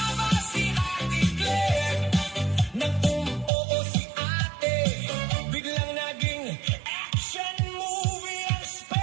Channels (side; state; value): left; drops out; at 3.5 s